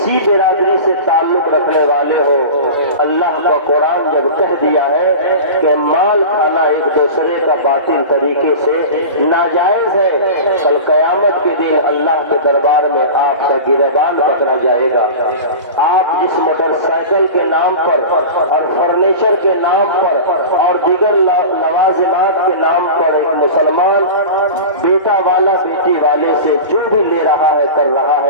برادری سے تعلق رکھنے والے ہو، اللہ کا قرآن جب کہہ دیا ہے کہ مال کھانا ایک دوسرے کا باطل طریقے سے ناجائز ہے، کل قیامت کے دن اللہ کے دربار میں آپ کا گریبان پکڑا جائے گا۔ آپ جس موٹر سائیکل کے نام پر اور فرنیچر کے نام پر اور دیگر لوازمات کے نام پر ایک مسلمان بیٹا والا بیٹی والے سے جو بھی لے رہا ہے کر رہا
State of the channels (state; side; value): inverted; both; correlation -0.31